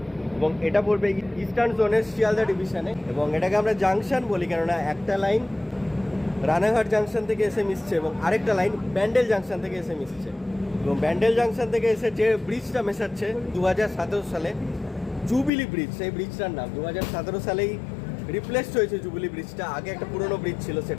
এবং এটা পড়বে ইস্টার্ন জোনের শিয়ালদা ডিভিশনে, এবং এটাকে আমরা জাংশন বলি কেননা একটা লাইন রানাঘাট জাংশন থেকে এসে মিশছে এবং আরেকটা লাইন ব্যান্ডেল জাংশন থেকে এসে মিশছে। এবং ব্যান্ডেল জাংশন থেকে এসে যে ব্রিজটা মেশাচ্ছে 2017 সালে জুবিলি ব্রিজ, সেই ব্রিজটার নাম 2017 সালেই রিপ্লেসড হয়েছে জুবিলি ব্রিজটা। আগে একটা পুরনো ব্রিজ ছিল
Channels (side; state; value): right; drops out; at 15.5 s